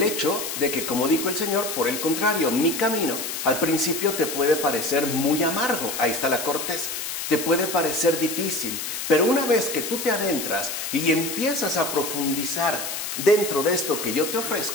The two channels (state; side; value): noise; left; hiss, 5 dB below the sound